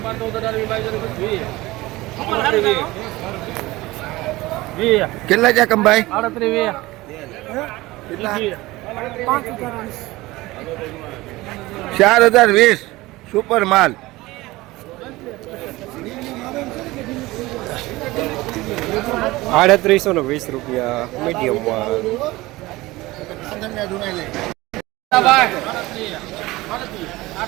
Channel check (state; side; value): quieter; left; 19.7 dB